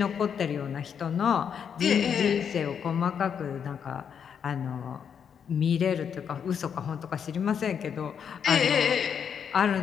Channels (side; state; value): right; quieter; 7.5 dB